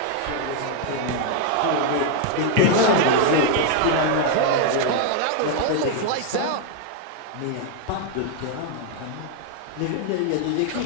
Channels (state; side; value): different; both; correlation 0.00